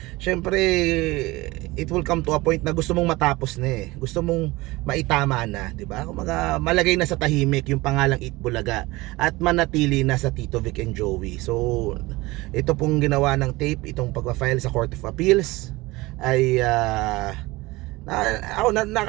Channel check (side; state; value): left; quieter; 21.2 dB